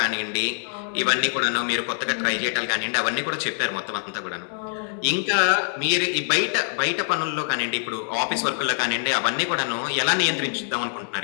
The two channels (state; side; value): silent; right; 62 dB below the other